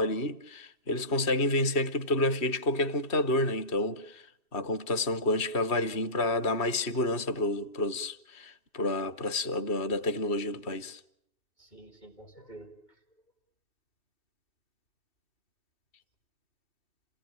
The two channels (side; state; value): right; late; 2.7 ms